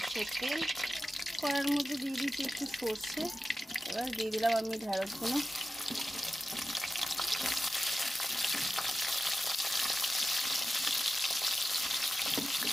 তেল, কড়াইয়ের মধ্যে দিয়ে দিয়েছি একটু সর্ষে। এবার দিয়ে দিলাম আমি ঢেঁড়সগুলো।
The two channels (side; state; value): both; normal; correlation 0.93